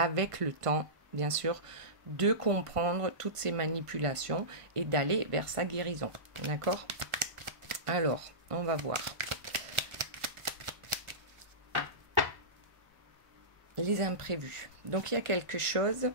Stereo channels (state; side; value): late; left; 1.5 ms